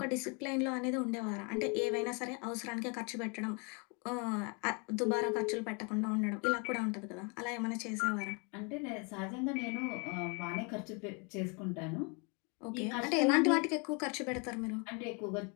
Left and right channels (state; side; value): quieter; right; 33.5 dB